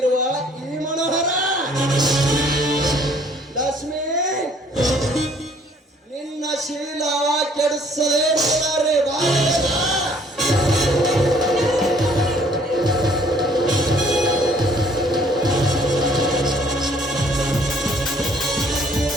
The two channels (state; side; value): normal; both; correlation 0.60